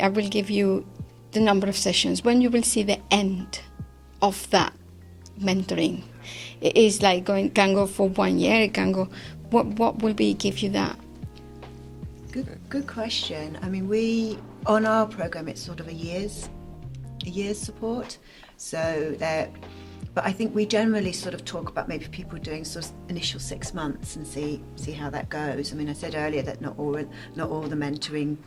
I will give you the number of sessions, when you will see the end of that mentoring? It is like can go for 1 year, it can go, what will be give you that? Good question. I mean, on our program, it's sort of a year's support. So but I think we generally sort of talk about maybe people doing sort of initial 6 months and see how that goes. I mean, I said earlier that not all the mentoring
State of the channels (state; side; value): identical; both; correlation 1.00